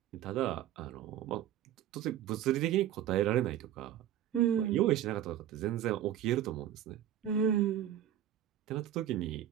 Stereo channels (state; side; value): quieter; left; 11.2 dB